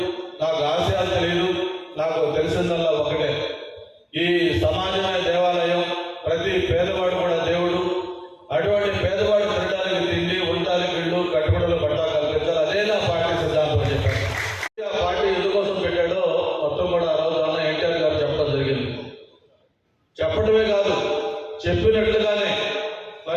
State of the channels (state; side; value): identical; both; correlation 1.00